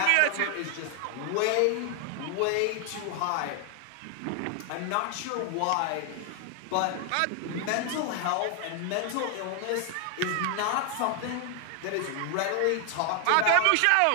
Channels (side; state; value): both; different; correlation 0.00